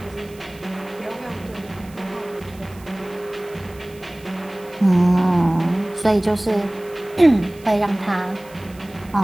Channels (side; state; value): right; noise; hiss, 24 dB below the sound